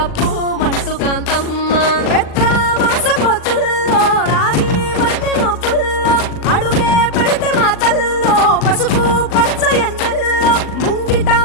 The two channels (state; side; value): late; right; 40 ms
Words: మంటు కాంతమ్మ పెద్ద మాస పొత్తుల్లో రాగి వంటి మొప్పుల్లో అడుగే పెడితే మాతల్లో పసుపు పచ్చ ఎన్నెల్లో ముంగిట